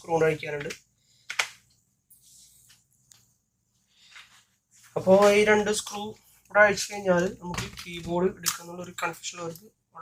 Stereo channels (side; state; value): both; identical; correlation 1.00